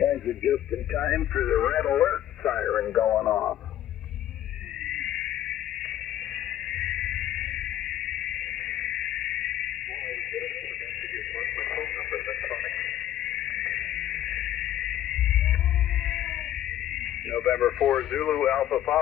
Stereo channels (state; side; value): quieter; right; 11.9 dB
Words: are just in time for the red alert siren going off. November 4 Zulu Alpha